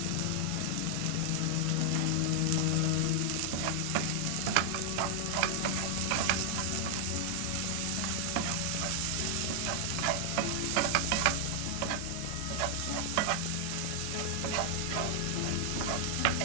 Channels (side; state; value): both; different; correlation 0.00